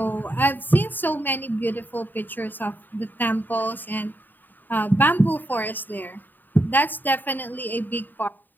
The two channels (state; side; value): late; right; 0.090 ms